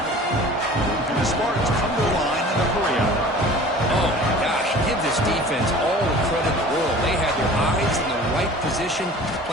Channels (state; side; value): normal; both; correlation 0.44